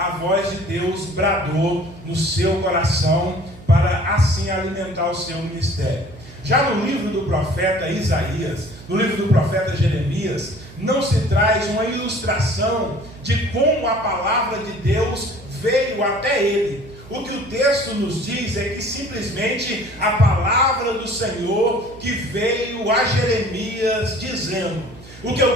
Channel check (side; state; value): right; noise; hum, 19 dB below the sound